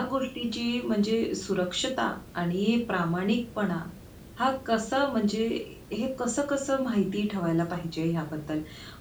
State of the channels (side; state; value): both; identical; correlation 1.00